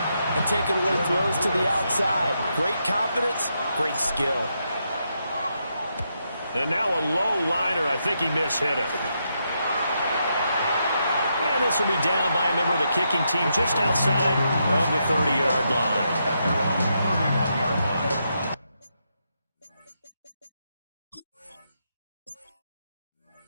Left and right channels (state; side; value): inverted; both; correlation -0.81